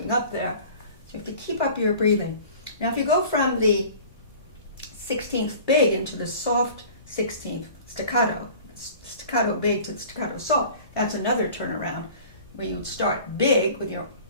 up there, so you have to keep up your breathing. Now if you go from the 16th big into the soft 16th staccato big to the staccato soft, that's another turnaround where you would start big with your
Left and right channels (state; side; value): inverted; both; correlation -0.44